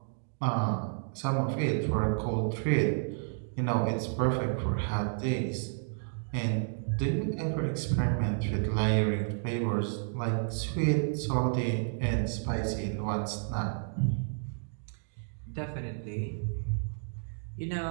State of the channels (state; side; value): silent; left; digital silence